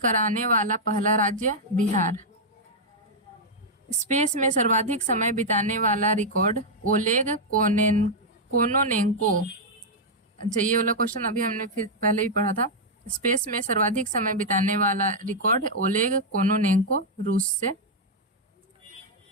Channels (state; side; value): normal; both; correlation -0.04